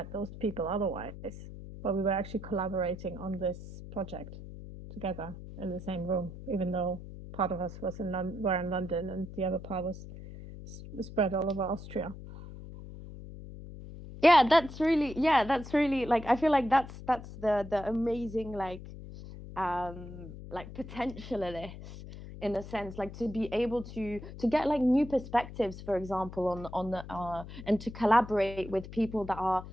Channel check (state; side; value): noise; left; hum, 13 dB below the sound